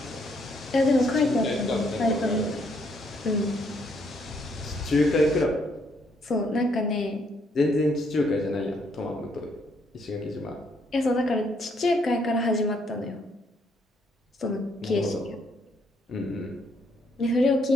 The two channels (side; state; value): both; normal; correlation 0.71